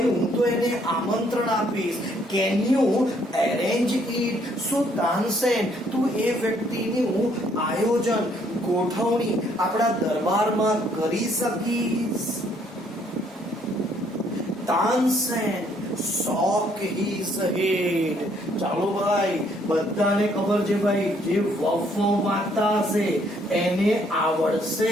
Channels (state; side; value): normal; both; correlation 0.66